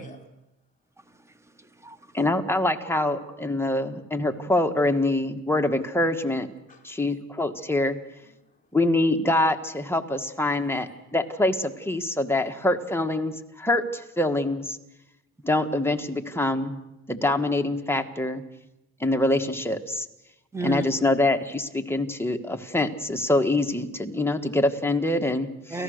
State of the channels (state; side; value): normal; both; correlation 0.64